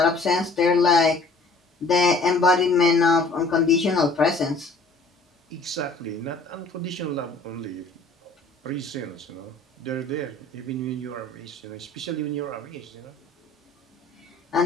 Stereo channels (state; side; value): quieter; right; 3.3 dB